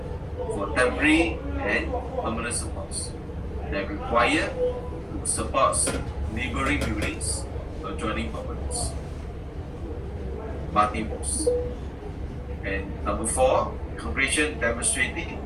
for temporary and permanent supports that require to support neighboring buildings or adjoining properties. Multiples. And number 4, calculation demonstrating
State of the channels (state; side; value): identical; both; correlation 1.00